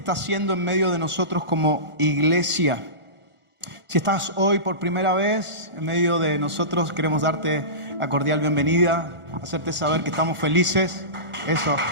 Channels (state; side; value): late; left; 1.4 ms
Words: haciendo en medio de nosotros como iglesia. Si estás hoy por primera vez en medio de nosotros, queremos darte la cordial bienvenida, hacerte saber que estamos felices. Eso.